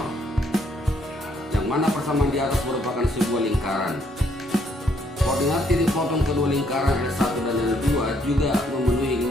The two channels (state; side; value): normal; both; correlation 0.69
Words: yang mana persamaan di atas merupakan sebuah lingkaran. Koordinat titik potong kedua lingkaran L1 dan L2 juga memenuhi